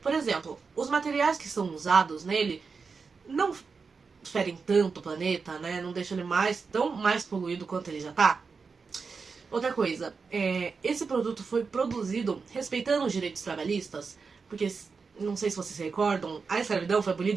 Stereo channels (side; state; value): left; quieter; 5.0 dB